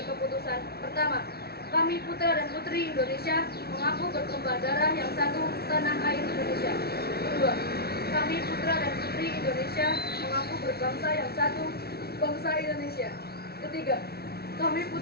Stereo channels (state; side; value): late; right; 0.45 ms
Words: keputusan. Pertama, kami putra dan putri Indonesia mengaku bertumpah darah yang satu tanah air Indonesia. Kedua, kami putra dan putri Indonesia mengaku berbangsa yang satu bangsa Indonesia. Ketiga, kami